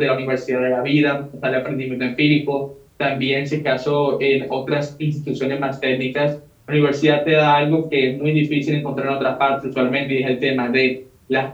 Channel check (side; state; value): both; identical; correlation 1.00